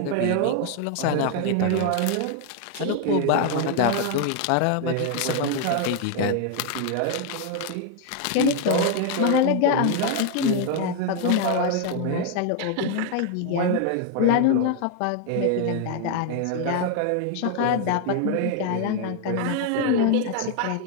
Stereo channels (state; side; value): different; both; correlation 0.01